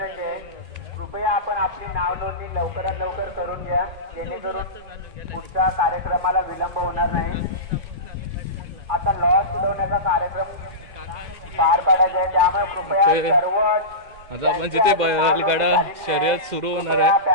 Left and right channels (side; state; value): left; late; 2.4 ms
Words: आहे, कृपया आपण आपली नाव नोंदणी लवकरात लवकर करून घ्या, जेणेकरून पुढच्या कार्यक्रमाला विलंब होणार नाही. आता लॉस उडवण्याचा कार्यक्रम पार पाडायचा आहे, त्यामुळे कृपया सर्व आता आपण जिथे बैलगाडा शर्यत सुरू होणार आहे